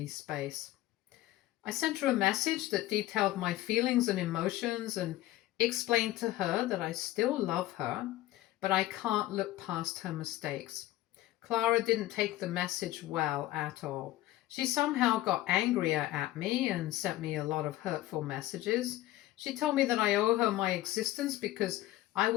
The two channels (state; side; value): quieter; right; 15.7 dB